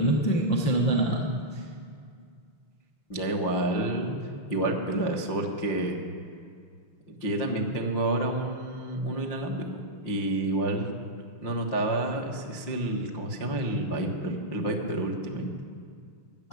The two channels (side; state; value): right; late; 5.8 ms